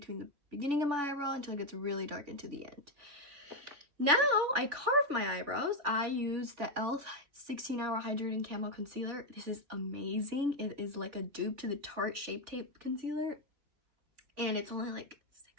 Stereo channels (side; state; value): left; late; 3.4 ms